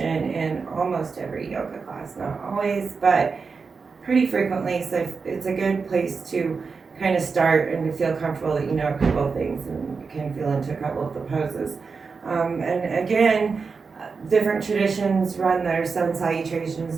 in almost every yoga class, not always, but pretty frequently. So it's a good place to kind of start and to feel comfortable that you know a couple of things and you can feel into a couple of the poses. And again, different traditions run their sun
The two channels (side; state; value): left; quieter; 4.9 dB